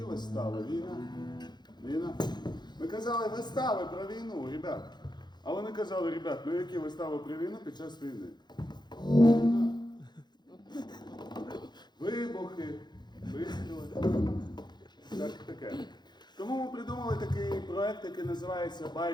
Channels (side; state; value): right; late; 0.21 ms